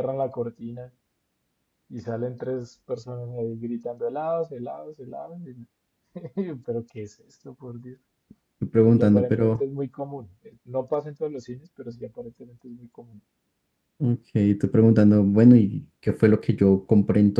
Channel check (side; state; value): both; identical; correlation 1.00